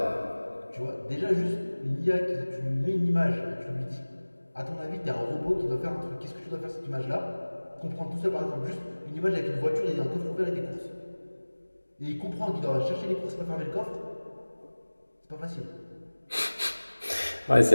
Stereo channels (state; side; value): inverted; both; correlation -1.00